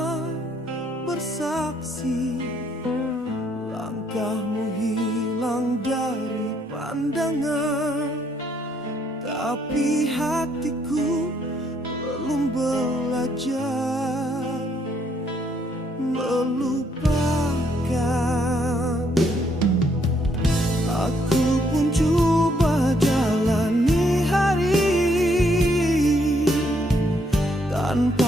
bersaksi. Langkahmu hilang dari pandangan, tapi hatiku belum belajar melupakan. Aku pun coba jalani hari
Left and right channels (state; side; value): normal; both; correlation 0.71